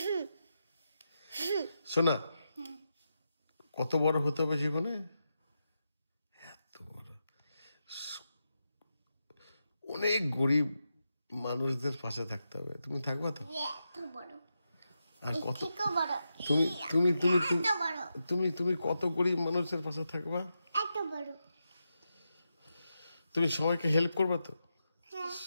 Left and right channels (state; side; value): inverted; both; correlation -0.88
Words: শোনা, কত বড় হতে হবে জীবনে? এত বড়, অনেক গরিব মানুষদের পাশে থাকতে হবে। তুমি থাকবা তো? এত বড়। আর কত বড়। তুমি তুমি তুমি এত বড়। তুমি তুমি কত গরিব মানুষের পাশে থাকবা? এত বড়। তুমি সবাইকে হেল্প করবা তো? হ্যাঁ।